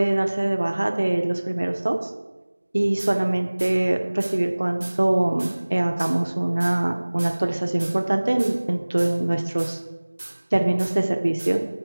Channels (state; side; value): inverted; both; correlation -1.00